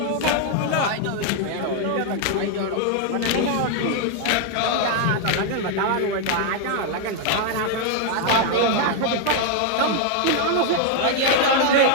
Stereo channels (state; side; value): different; both; correlation 0.00